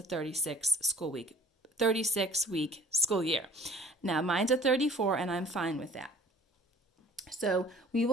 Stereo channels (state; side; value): normal; both; correlation 0.50